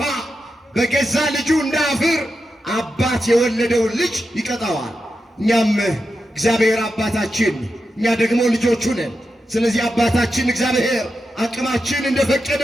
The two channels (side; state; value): both; normal; correlation 0.88